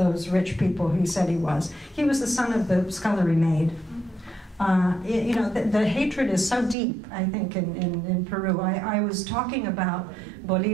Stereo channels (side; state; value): left; drops out; at 6.8 s